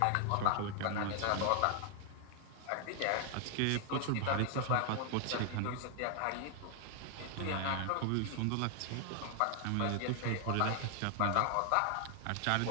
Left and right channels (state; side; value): different; both; correlation 0.00